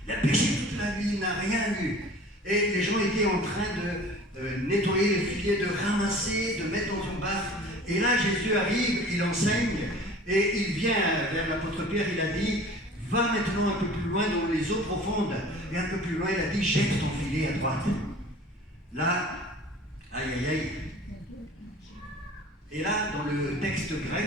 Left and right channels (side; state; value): both; normal; correlation 0.44